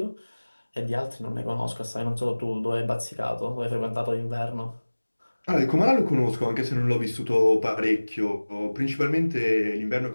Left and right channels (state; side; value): inverted; both; correlation -1.00